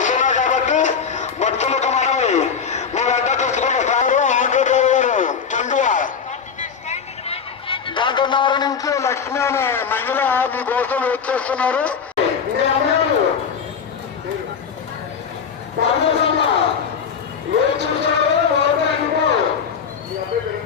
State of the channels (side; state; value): right; quieter; 6.5 dB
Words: కాబట్టి భక్తులకు మనవి మీ వద్ద తెచ్చుకున్న సారు ఆంధ్రప్రదేశ్ చందువ గంటన్నర నుంచి లక్ష్మి అనే మహిళ మీ కోసం వెయిట్ చేస్తున్నారు. ఏం చూసారో